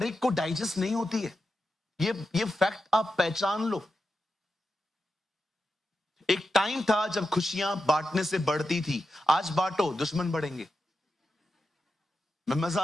एक को डाइजेस्ट नहीं होती है। ये फैक्ट आप पहचान लो। एक टाइम था जब खुशियां बांटने से बढ़ती थी। आज बांटो, दुश्मन बढ़ेंगे। मैं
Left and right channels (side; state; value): both; normal; correlation 0.89